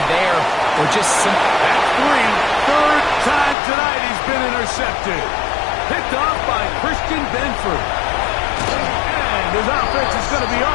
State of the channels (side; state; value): right; drops out; at 3.6 s